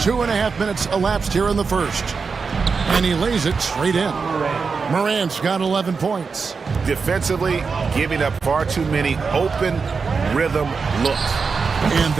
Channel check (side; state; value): left; quieter; 5.1 dB